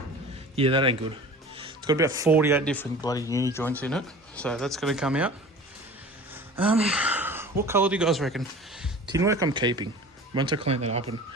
Yeah, that ain't good. It's got about 48 different bloody uni joints in it, so that's going to come out. What colour do you guys reckon? Tin work I'm keeping. Once I clean that up and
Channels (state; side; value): normal; both; correlation 0.41